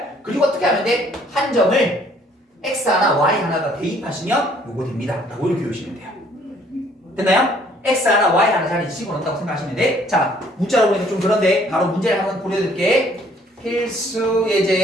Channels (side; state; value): both; normal; correlation 0.61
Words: 그리고 어떻게 하면 돼? 한 점을 x 하나 y 하나가 대입하시면 요거 됩니다 라고 이렇게 외우시면 돼요. 됐나요? x 하나 y 하나 자리 집어넣는다고 생각하시면 돼. 자 문자로 보니까 좀 그런데 바로 문제를 한번 보여드릴게. 필수